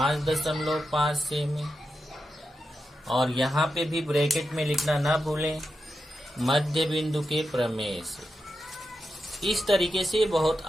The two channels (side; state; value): both; normal; correlation 0.88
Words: सेमी। और यहाँ पे भी ब्रैकेट में लिखना ना भूलें, मध्य बिंदु के प्रमेय से। इस तरीके से बहुत